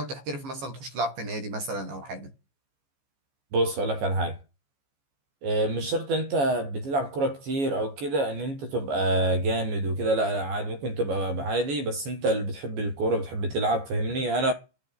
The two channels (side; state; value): left; late; 14 ms